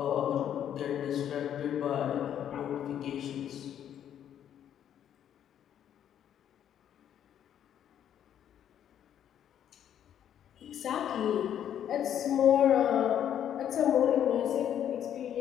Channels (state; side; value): quieter; right; 9.9 dB